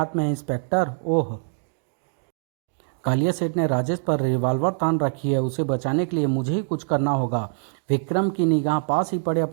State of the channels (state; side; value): silent; left; 62 dB below the other